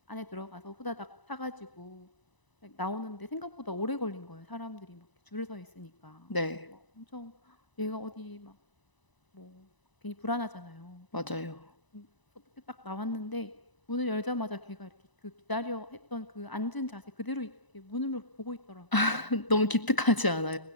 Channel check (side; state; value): right; late; 1.0 ms